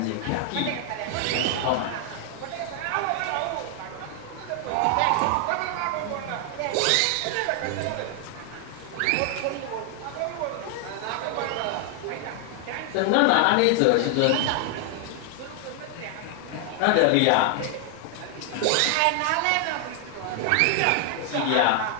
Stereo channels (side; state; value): both; different; correlation 0.00